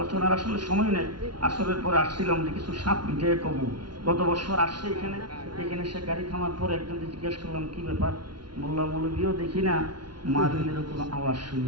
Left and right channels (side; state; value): left; late; 0.71 ms